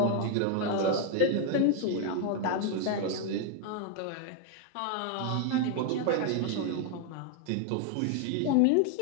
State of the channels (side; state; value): both; different; correlation 0.00